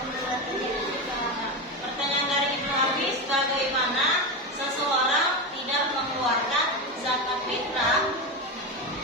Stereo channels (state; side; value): normal; both; correlation 0.16